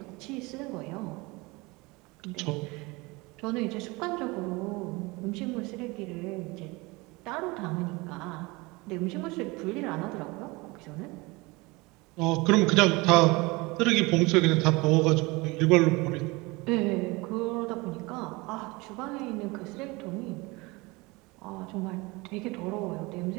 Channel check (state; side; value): quieter; left; 24.4 dB